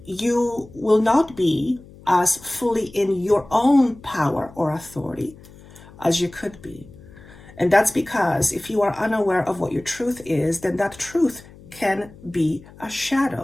you will not be as fully in your own power or authority as you could be. And that's because if you are unaware of what your truth is, then that truth can be a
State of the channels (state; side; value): noise; left; hum, 21 dB below the sound